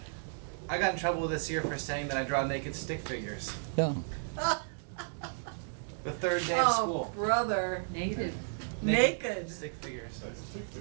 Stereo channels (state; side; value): silent; left; digital silence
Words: I got in trouble this year for saying that I draw naked stick figures. Yeah. The third day of Oh, school. brother. Negative. Naked. Stick figures. That's a stick